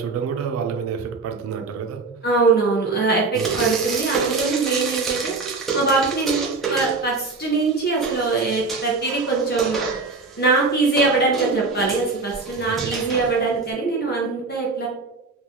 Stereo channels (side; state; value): left; quieter; 3.9 dB